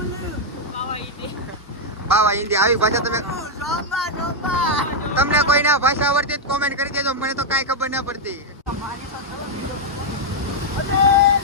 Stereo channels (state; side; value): normal; both; correlation -0.01